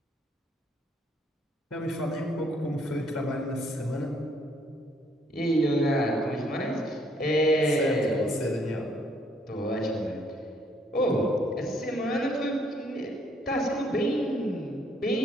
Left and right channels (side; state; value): both; normal; correlation 0.67